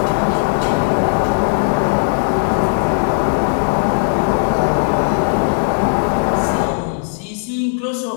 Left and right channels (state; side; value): silent; right; digital silence